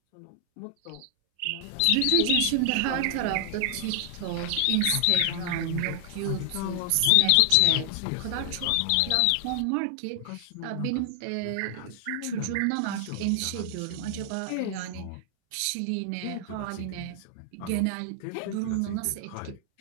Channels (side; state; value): both; different; correlation 0.00